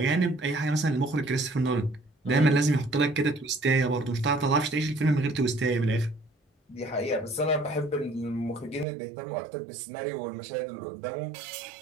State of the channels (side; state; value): left; drops out; at 8.8 s